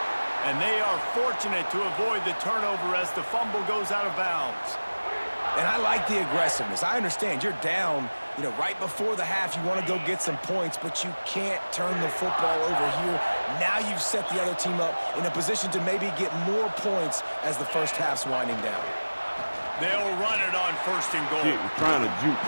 And they are fortunate to avoid the turnover as the fumble goes out of bounds. And I like the aggressiveness. I understand you're down, right before the half. You want to go get some points, but you can't turn the football over here. Now you've set the other team up in a position to maybe get more points as the first half's winding down. They'll run it on 1st and goal. He's trying to juke,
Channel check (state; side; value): inverted; both; correlation -1.00